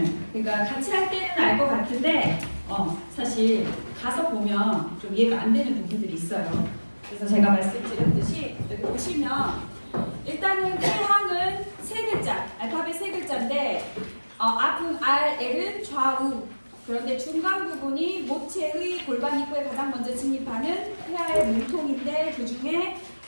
그러니까 같이 할 때는 알 것 같은데 사실 가서 보면 좀 이해가 안 되는 부분들이 있어요. 그래서 제가 말씀드렸듯이 여기 보시면 일단은 태향은 세 글자, 알파벳 세 글자인데 앞은 R, L은 좌우. 그런데 중간 부분이 모체의 골반 입구에 가장 먼저 진입하는 태아의 몸통인데 그 중에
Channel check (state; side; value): inverted; both; correlation -1.00